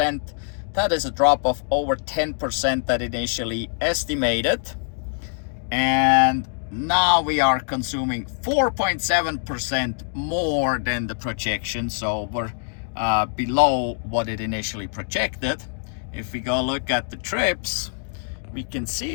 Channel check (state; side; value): silent; right; 61 dB below the other